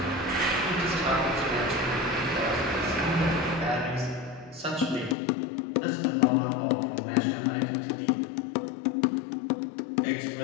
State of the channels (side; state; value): right; drops out; at 5.2 s